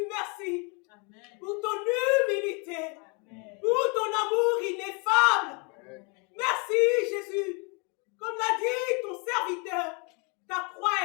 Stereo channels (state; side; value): quieter; right; 33.5 dB